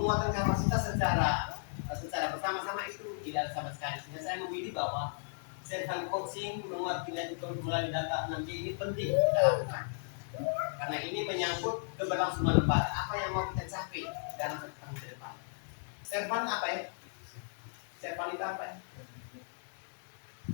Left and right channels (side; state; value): right; silent; digital silence